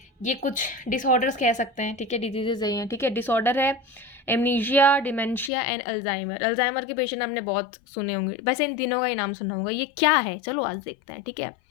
ये कुछ डिसऑर्डर्स कह सकते हैं, ठीक है? डिजीजेज नहीं है, ठीक है? डिसऑर्डर है amnesia, dementia and Alzheimer. Alzheimer के पेशेंट आपने बहुत सुने होंगे, वैसे इन तीनों का ही नाम सुना होगा। ये क्या है, चलो आज देखते हैं, ठीक है?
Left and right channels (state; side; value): drops out; right; at 5.5 s